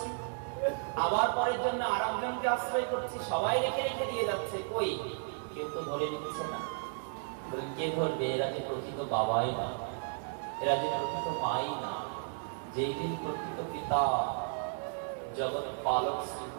আবার পরের জন্য আরেকজনকে আশ্রয় করছি। সবাই রেখে রেখে দিয়ে যাচ্ছে, কই কেউ তো ধরে নিচ্ছে না। কে ধরবে? এরা যে প্রকৃত বাবাই না, এরা যে প্রকৃত মাই না। যেই দিন প্রকৃত পিতা জগৎ পালক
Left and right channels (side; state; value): left; silent; digital silence